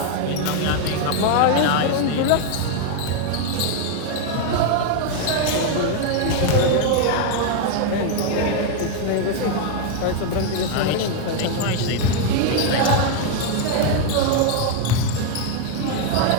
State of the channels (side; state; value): both; different; correlation 0.00